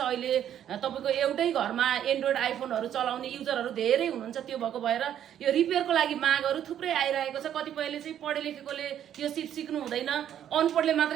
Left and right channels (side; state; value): left; quieter; 10.3 dB